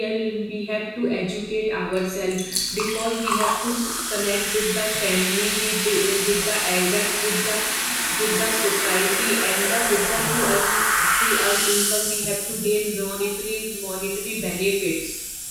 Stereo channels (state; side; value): identical; both; correlation 1.00